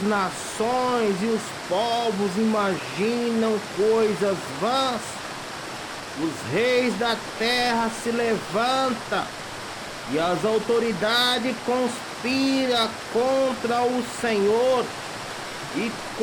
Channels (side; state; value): both; identical; correlation 1.00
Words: nações e os povos imaginam coisas vãs? Os reis da terra se levantam e as autoridades conspiram contra o Senhor e